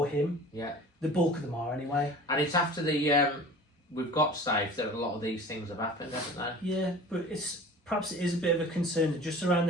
him. Yeah. The bulk of them are, anyway. And it's after we've got safe that a lot of these things have happened, haven't they? Yeah, but perhaps it is a bit of a concern that just around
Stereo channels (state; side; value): normal; both; correlation 0.41